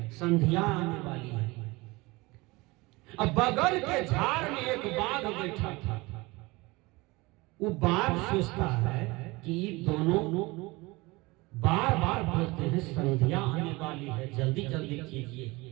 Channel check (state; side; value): quieter; left; 23.1 dB